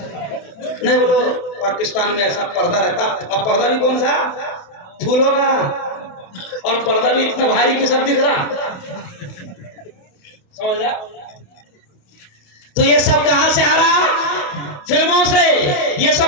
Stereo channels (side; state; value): right; late; 28 ms